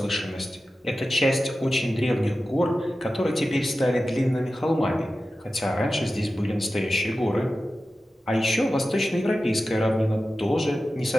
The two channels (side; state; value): both; normal; correlation 0.94